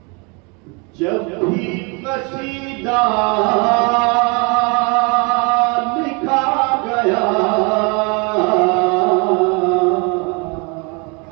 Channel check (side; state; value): left; quieter; 31.8 dB